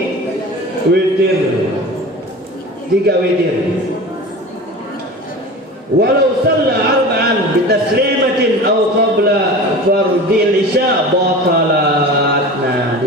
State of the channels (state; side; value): normal; both; correlation 0.35